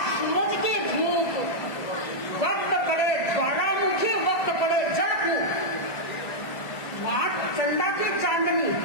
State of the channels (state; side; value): late; right; 2.0 ms